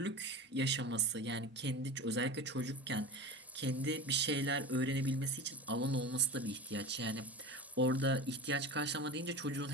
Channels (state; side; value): normal; both; correlation 0.29